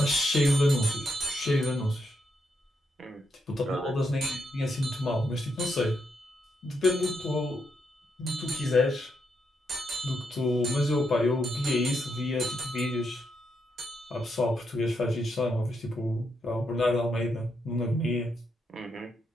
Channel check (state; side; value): normal; both; correlation 0.81